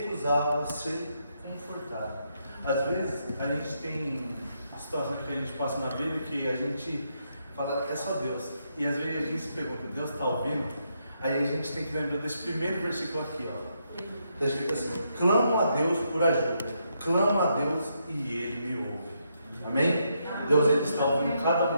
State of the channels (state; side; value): inverted; both; correlation -0.78